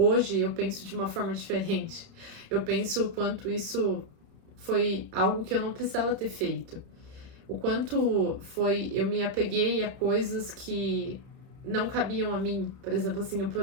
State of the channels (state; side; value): late; left; 30 ms